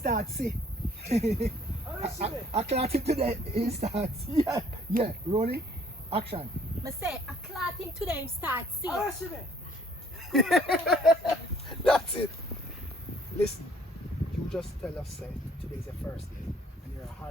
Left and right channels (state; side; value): normal; both; correlation 0.60